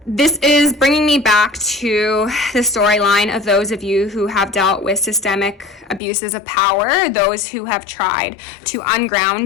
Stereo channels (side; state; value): right; drops out; at 6.0 s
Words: This is bringing me back to the storyline of those of you who have dealt with systemic abuses of power, those who have tried to